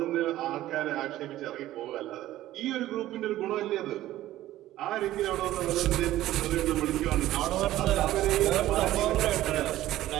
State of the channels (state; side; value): quieter; left; 14.6 dB